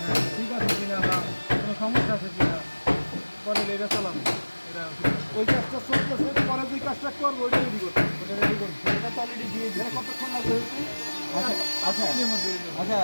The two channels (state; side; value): inverted; both; correlation -1.00